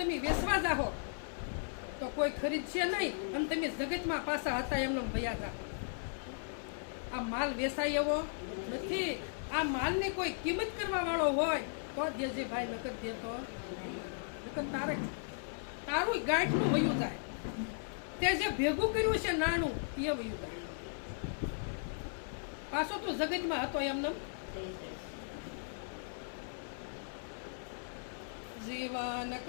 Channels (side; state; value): right; silent; digital silence